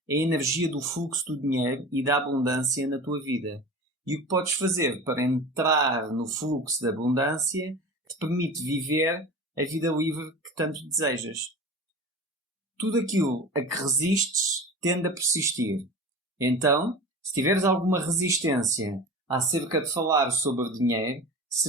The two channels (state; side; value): normal; both; correlation 0.34